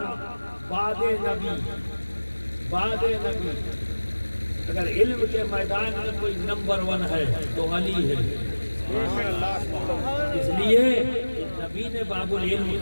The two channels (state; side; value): inverted; both; correlation -1.00